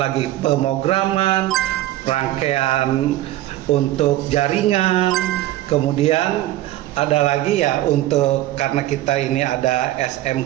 pemrograman, rangkaian untuk jaringan, kemudian ada lagi ya untuk karena kita ini ada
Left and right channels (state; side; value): quieter; left; 15.0 dB